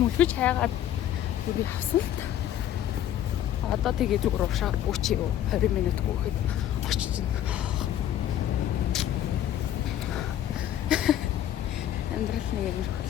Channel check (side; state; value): right; quieter; 11.4 dB